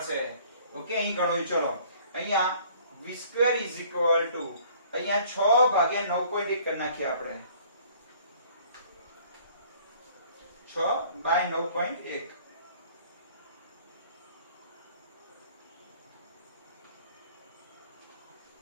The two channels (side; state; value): both; inverted; correlation -0.55